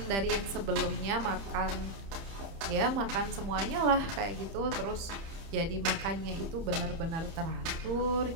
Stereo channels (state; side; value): late; left; 30 ms